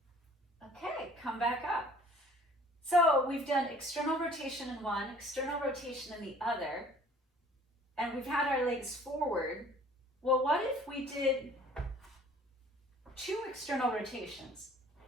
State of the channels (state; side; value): normal; both; correlation 0.52